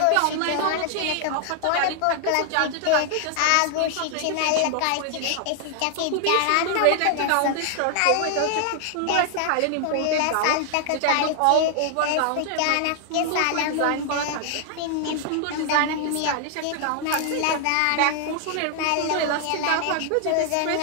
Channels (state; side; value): different; both; correlation 0.00